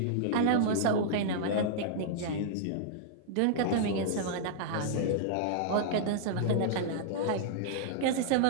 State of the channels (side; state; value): both; different; correlation -0.02